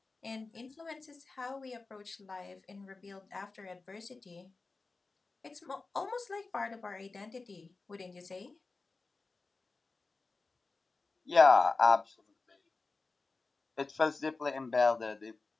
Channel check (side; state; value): right; quieter; 3.8 dB